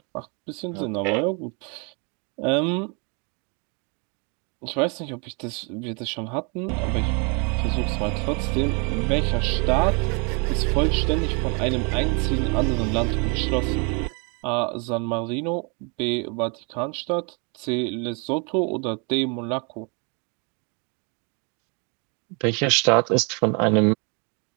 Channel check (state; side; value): quieter; left; 34.1 dB